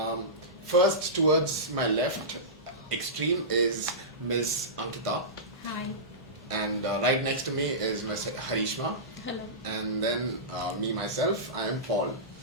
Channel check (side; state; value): both; normal; correlation -0.18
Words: First, towards my left extreme is Ms. Ankita. Hi. And right next to me is Ms. Harishma. Hello. And then myself, I am Paul.